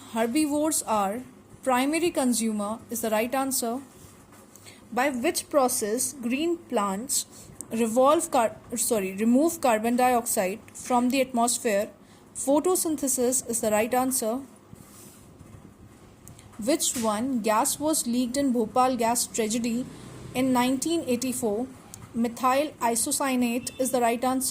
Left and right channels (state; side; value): identical; both; correlation 1.00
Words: herbivores are primary consumer is the right answer. By which process green plants remove carbon dioxide from the atmosphere? Photosynthesis is the right answer. Which one gas was leaked in Bhopal gas tragedy in 1984? Methyl isocyanate is the right